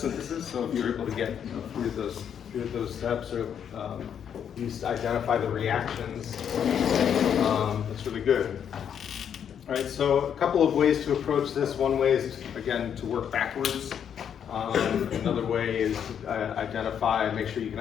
so if you're able to get three of those steps, or at least identify the reactions, that's really good. All right, so a couple of ways to approach this. One way is, again, to work backwards. Another way is to make sure you can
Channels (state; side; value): quieter; right; 8.4 dB